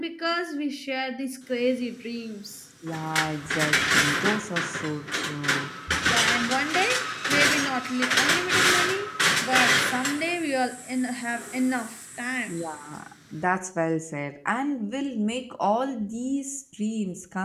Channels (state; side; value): identical; both; correlation 1.00